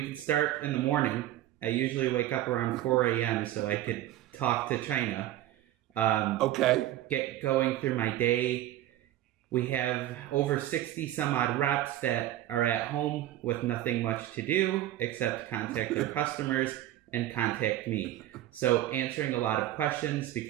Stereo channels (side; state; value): left; quieter; 13.7 dB